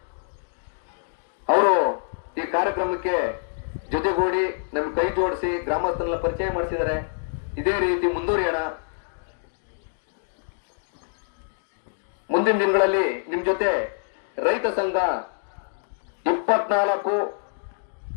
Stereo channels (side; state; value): right; silent; digital silence